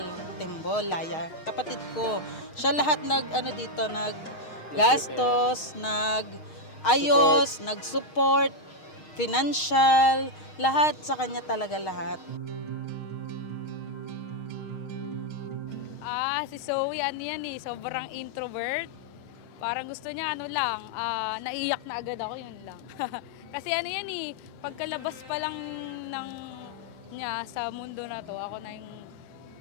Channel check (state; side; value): late; right; 6.4 ms